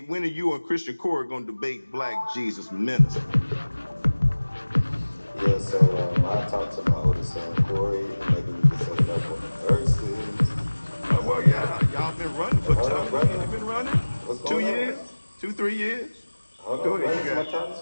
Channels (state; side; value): inverted; both; correlation -1.00